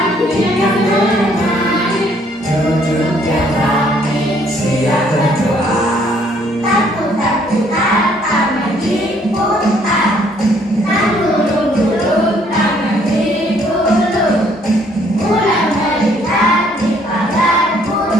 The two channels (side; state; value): both; normal; correlation 0.64